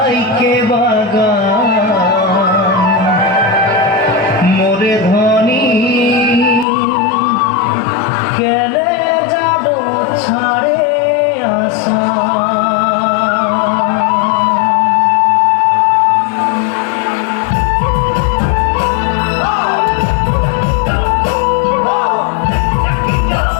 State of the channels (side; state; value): right; drops out; at 6.7 s